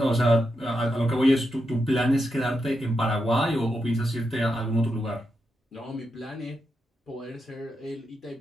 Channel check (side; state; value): both; normal; correlation 0.85